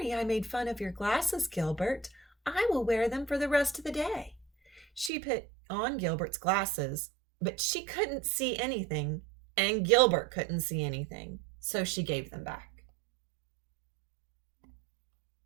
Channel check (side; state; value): left; drops out; at 5.1 s